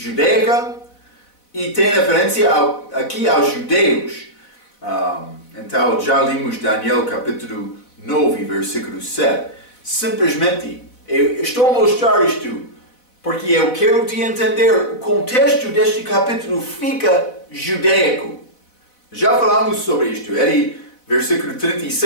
e tem referência aqui aos judeus. Então já limos Daniel capítulo 9, versículo 7. Simplesmente, eu estou a mostrar isto porque eu quero te entender o contexto deste capítulo fica judaico. Já falamos sobre isto. Ele, versículo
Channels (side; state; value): right; late; 4.0 ms